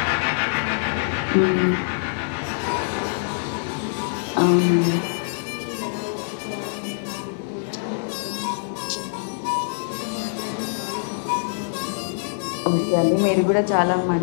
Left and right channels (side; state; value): right; silent; digital silence